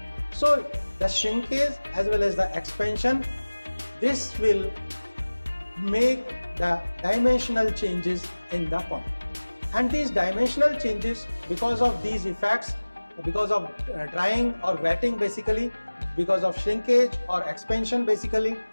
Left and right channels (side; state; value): both; inverted; correlation -1.00